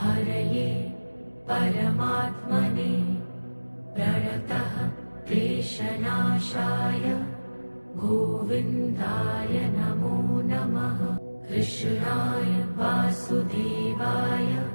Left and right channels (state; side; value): inverted; both; correlation -1.00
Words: परमात्मने प्रणतः क्लेशनाशाय गोविन्दाय नमो नमः। कृष्णाय वासुदेवाय